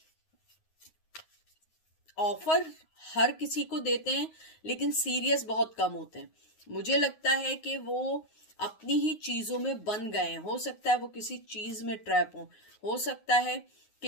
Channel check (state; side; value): late; right; 9.5 ms